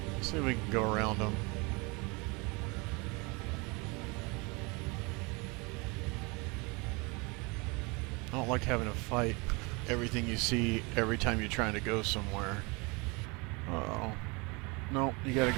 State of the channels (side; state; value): left; quieter; 28.2 dB